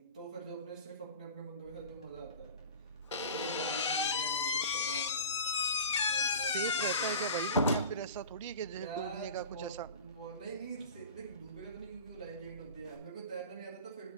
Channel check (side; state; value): both; inverted; correlation -0.37